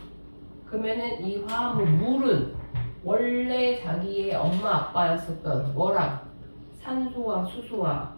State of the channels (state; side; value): inverted; both; correlation -1.00